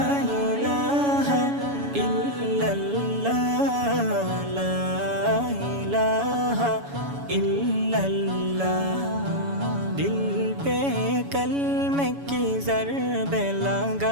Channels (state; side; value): late; left; 7.1 ms